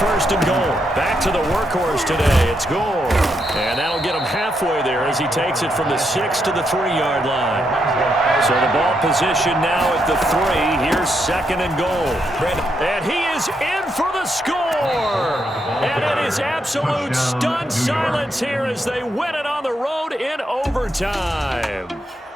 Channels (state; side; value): normal; both; correlation 0.80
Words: 1st and goal. Back to the workhorse today. It's Gore. And that'll get him halfway there as he takes it from the 6 to the 3-yard line. So the ball position now at the 3. Here's 2nd and goal. And he is in for the score. And it is absolute stunned silence here as they win it on the road in overtime.